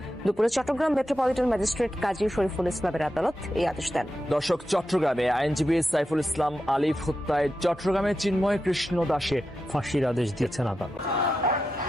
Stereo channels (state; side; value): normal; both; correlation 0.89